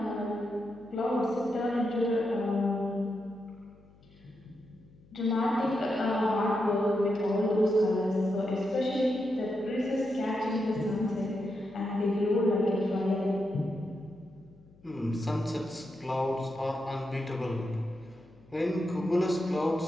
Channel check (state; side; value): noise; left; hum, 27 dB below the sound